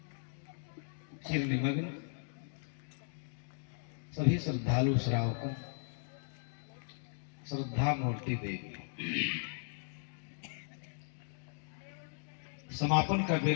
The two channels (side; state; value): right; silent; 53 dB below the other